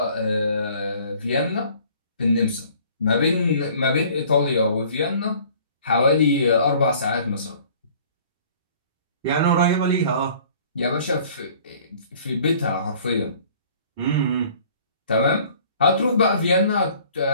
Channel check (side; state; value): both; inverted; correlation -0.52